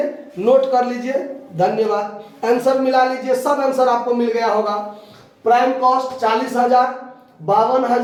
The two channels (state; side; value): identical; both; correlation 1.00